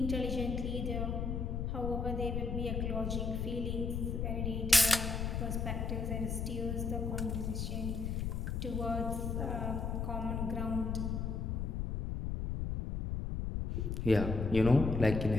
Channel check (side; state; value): left; noise; rumble, 1 dB below the sound